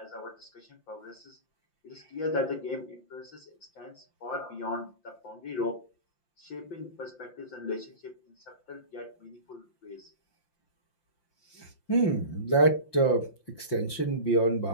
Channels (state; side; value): late; right; 5.8 ms